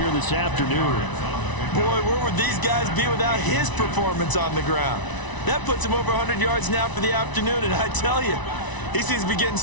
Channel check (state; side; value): late; right; 1.0 ms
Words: this afternoon. Boy, where would these guys be without his performance on the ground? That puts him over 100 yards now for the afternoon, and I tell you, he seems to be getting